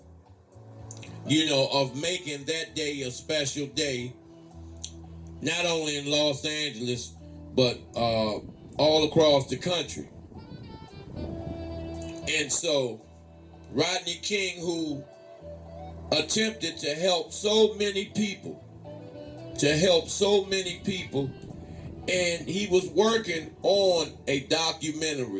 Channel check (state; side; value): identical; both; correlation 1.00